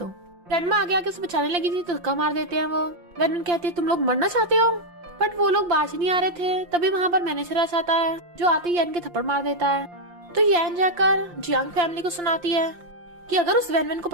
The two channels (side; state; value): left; late; 5.7 ms